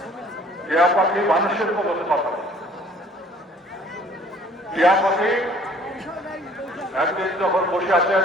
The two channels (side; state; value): both; normal; correlation 0.55